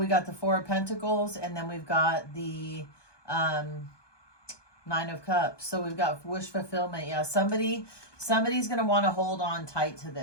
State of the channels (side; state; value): right; late; 1.2 ms